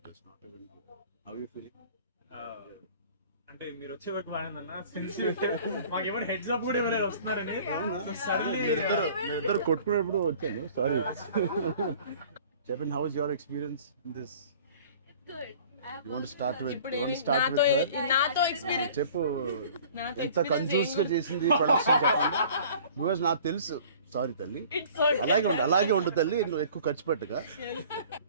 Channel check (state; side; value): inverted; both; correlation -0.48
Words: Not even how you feeling? అంటే మీరు వచ్చే వరకు బాగుందన్న, మాకేమైనా హెడ్స్ అప్ కూడా ఎవరైనా వస్తున్నారని ఇద్దరు కొట్టుకునేప్పుడు వచ్చాను. సారీ. చెప్పండి, how is your experience in this? You want to start with her? నాతో ఎక్స్పీరియన్స్ చెప్పు, ఎంత కన్ఫ్యూజ్ గా చేసింది ప్రొడక్షన్ చెప్పండి. బికాజ్ నాకు తెలుసు. సారీ తల్లి, అలాగే ఉండు తల్లి, నువ్వు ఎక్కువ ఖర్చు పెట్టగా.